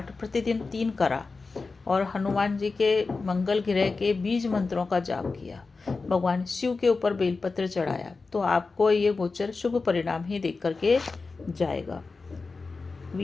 प्रतिदिन 3 करा और हनुमान जी के मंगल ग्रह के बीज मंत्रों का जाप किया, भगवान शिव के ऊपर बेलपत्र चढ़ाया, तो आपको ये गोचर शुभ परिणाम ही देख करके जाएगा।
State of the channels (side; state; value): right; quieter; 4.1 dB